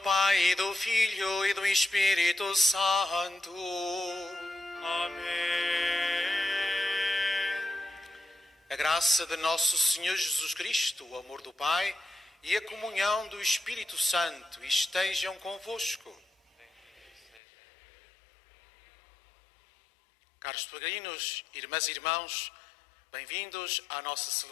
e do Filho, e do Espírito Santo. Amém. A graça de nosso Senhor Jesus Cristo, o amor do Pai e a comunhão do Espírito Santo estejam convosco. Caros peregrinos, irmãs e irmãos, bem-vindos à nossa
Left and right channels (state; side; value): drops out; right; at 17.4 s